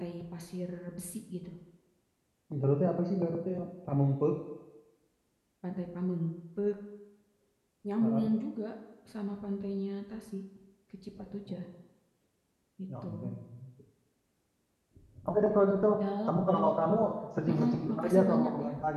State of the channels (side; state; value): both; identical; correlation 1.00